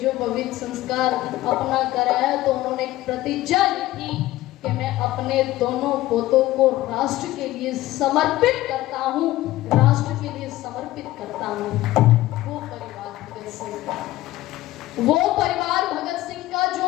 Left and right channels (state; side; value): quieter; right; 16.3 dB